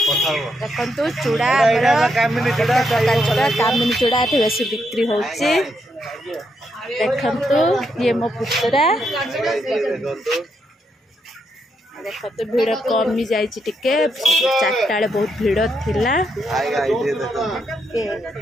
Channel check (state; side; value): normal; both; correlation 0.79